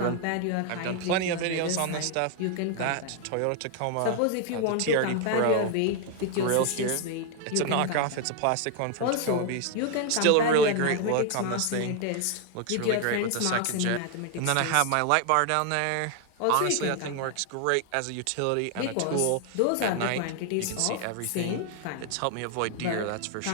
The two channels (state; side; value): different; both; correlation 0.00